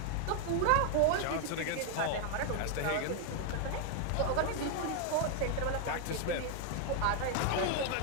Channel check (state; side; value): different; both; correlation 0.00